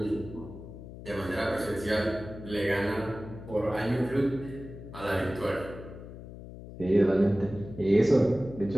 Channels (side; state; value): left; noise; hum, 13 dB below the sound